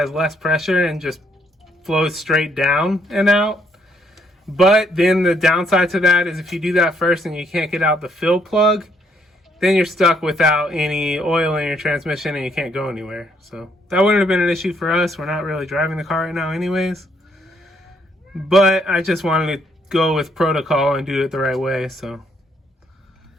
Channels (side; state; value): both; normal; correlation 0.70